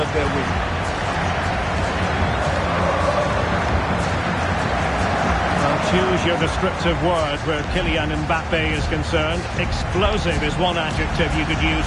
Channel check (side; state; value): both; identical; correlation 1.00